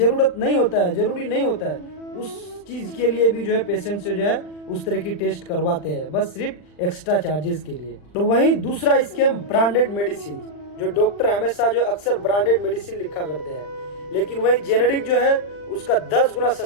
नहीं होता है, जरूरी नहीं होता है। उस चीज के लिए भी जो है पेशेंट से जो है उस तरह की टेस्ट करवाते हैं, बस सिर्फ एक्स्ट्रा चार्जेस के लिए। तो वहीं दूसरा स्कैम ब्रांडेड मेडिसिन, जो डॉक्टर हमेशा जो अक्सर ब्रांडेड मेडिसिन लिखा करते हैं, लेकिन वही जेनेरिक जो है उसका 10 गुना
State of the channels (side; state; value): right; late; 40 ms